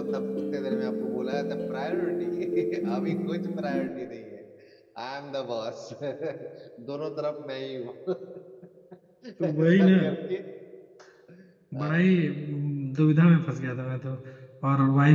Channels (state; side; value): identical; both; correlation 1.00